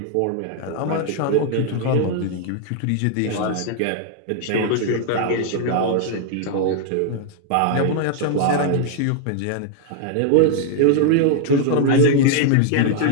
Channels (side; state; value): both; different; correlation -0.01